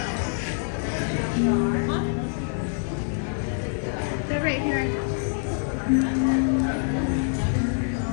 They're right here.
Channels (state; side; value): silent; right; digital silence